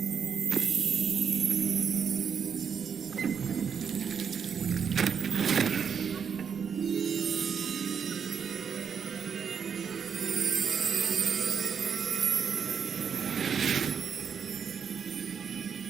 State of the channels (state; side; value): quieter; left; 7.0 dB